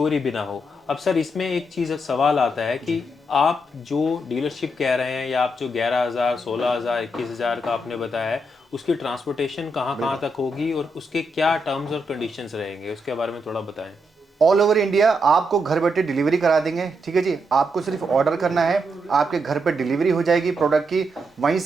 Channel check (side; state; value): both; normal; correlation 0.81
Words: भी ना हो। अब सर इसमें एक चीज़ सवाल आता है कि आप जो डीलरशिप कह रहे हैं, या आप जो 11,000, 16,000, 21,000 का आपने बताया है, उसकी ट्रांसपोर्टेशन कहाँ तक होगी और उसके क्या टर्म्स और कंडीशंस रहेंगे, उसके बारे में थोड़ा बताएं। ऑल ओवर इंडिया आपको घर बैठे डिलीवरी करा देंगे, ठीक है जी। आपको सिर्फ ऑर्डर करना है, आपके घर पे डिलीवरी हो जाएगी प्रोडक्ट की, वहीं